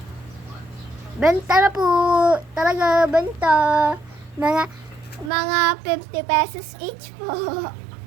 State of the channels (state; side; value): drops out; left; at 5.3 s